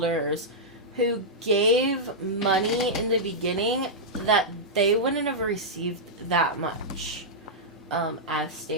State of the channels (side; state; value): both; normal; correlation -0.09